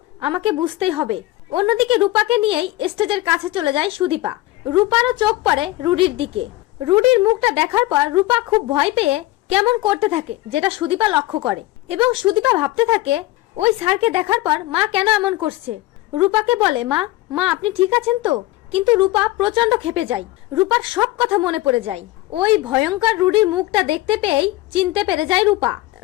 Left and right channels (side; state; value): right; quieter; 17.8 dB